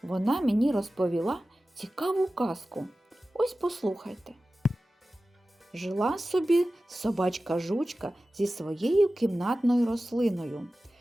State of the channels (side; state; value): both; normal; correlation 0.95